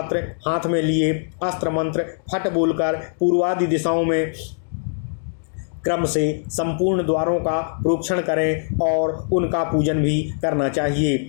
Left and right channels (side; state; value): right; silent; digital silence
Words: हाथ में लिए अस्त्र मंत्र फट बोलकर पूर्वादि दिशाओं में क्रम से संपूर्ण द्वारों का प्रोक्षण करें और उनका पूजन भी करना